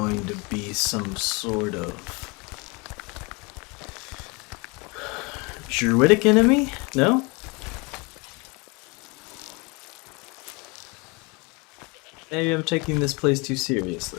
to be some sort of druidic enemy? No? Maybe I'm taking this place too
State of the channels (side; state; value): right; quieter; 28.5 dB